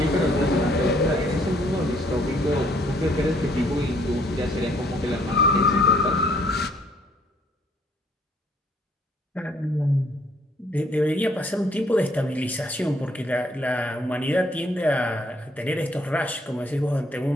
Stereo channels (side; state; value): both; normal; correlation 0.65